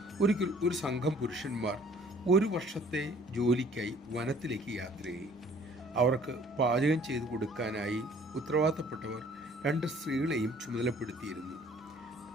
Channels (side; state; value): both; normal; correlation 0.55